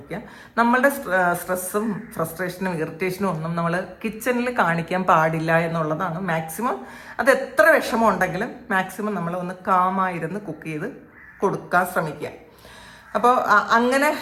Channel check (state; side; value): identical; both; correlation 1.00